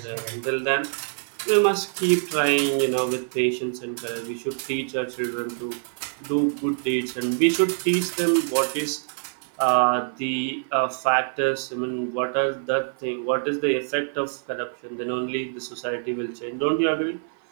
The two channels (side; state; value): left; silent; 55 dB below the other